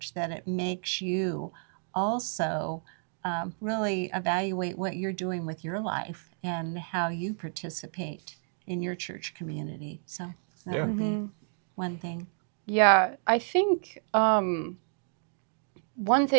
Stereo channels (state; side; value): silent; left; 58 dB below the other